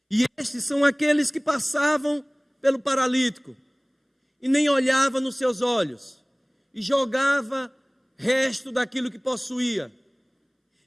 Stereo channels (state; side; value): identical; both; correlation 1.00